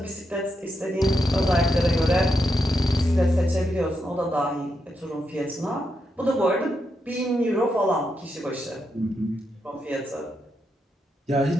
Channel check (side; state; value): both; normal; correlation 0.83